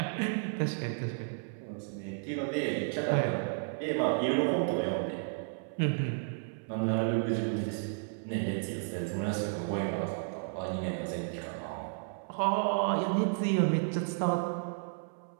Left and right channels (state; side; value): silent; left; 56 dB below the other